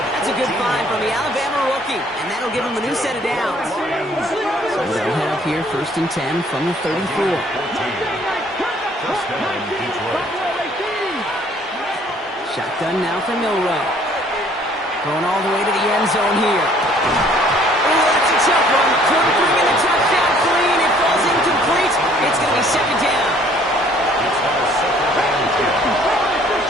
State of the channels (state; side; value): normal; both; correlation 0.59